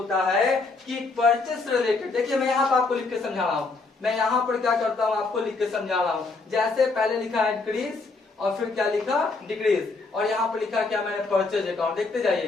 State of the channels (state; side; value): quieter; right; 3.8 dB